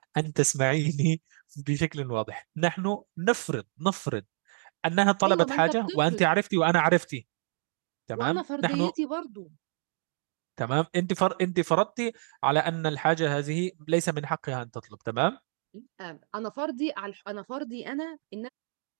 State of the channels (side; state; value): left; silent; 59 dB below the other